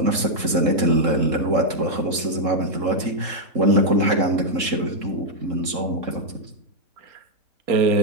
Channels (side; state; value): left; late; 3.7 ms